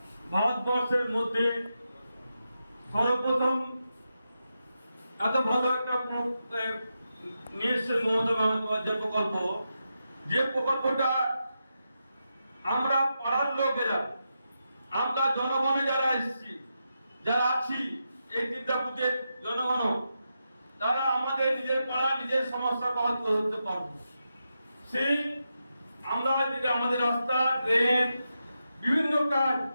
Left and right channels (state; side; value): inverted; both; correlation -0.87